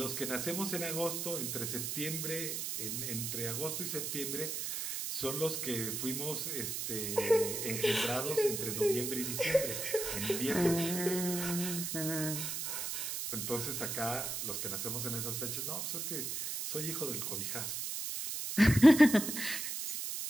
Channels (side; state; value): right; noise; hiss, 3 dB below the sound